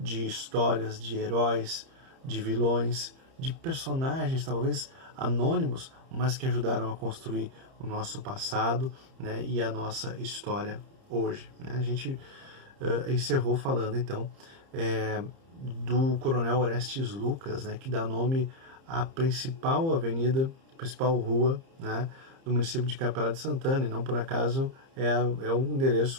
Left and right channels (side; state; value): left; late; 30 ms